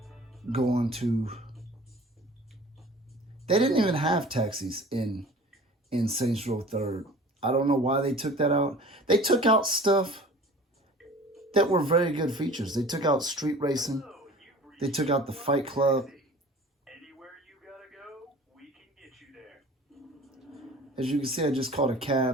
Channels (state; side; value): normal; both; correlation 0.44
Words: going to... They didn't even have taxis in Saints Row 3rd. I don't know why they took that out. They took out stuff that were very good features. They took out street racing. They took out the Fight Club. As you can see, I just called a